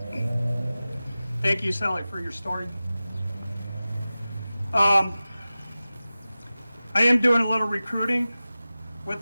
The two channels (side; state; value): both; inverted; correlation -0.96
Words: Thank you, Sally, for your story. I am doing a little recruiting.